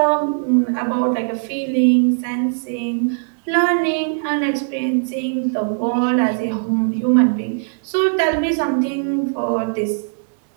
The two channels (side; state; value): left; silent; digital silence